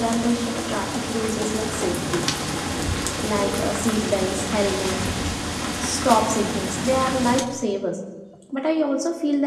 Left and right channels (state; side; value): identical; both; correlation 1.00